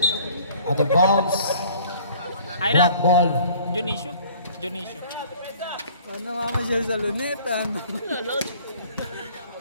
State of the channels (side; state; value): both; inverted; correlation -0.53